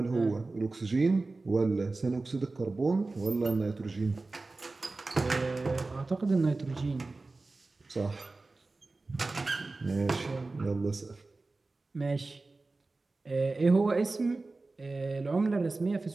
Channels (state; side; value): quieter; left; 3.4 dB